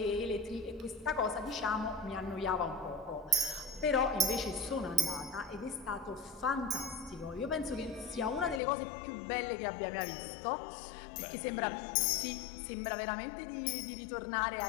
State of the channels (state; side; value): drops out; right; at 8.6 s